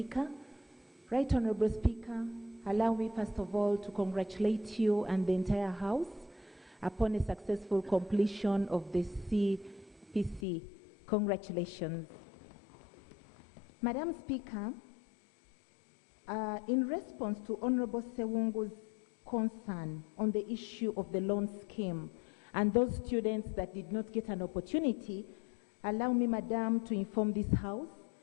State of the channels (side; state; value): right; drops out; at 10.5 s